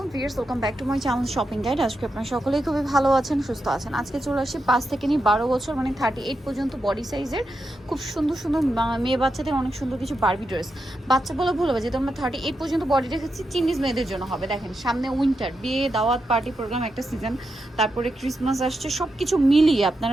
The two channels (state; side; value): normal; both; correlation 0.86